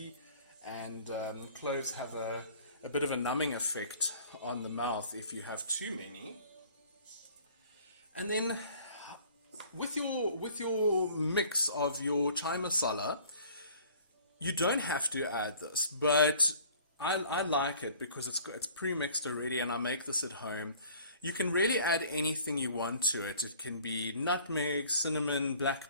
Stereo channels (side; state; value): both; inverted; correlation -0.51